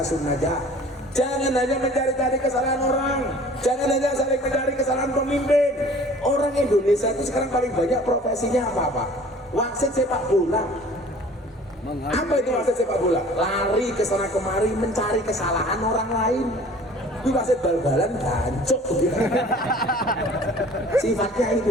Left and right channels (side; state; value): both; normal; correlation 0.48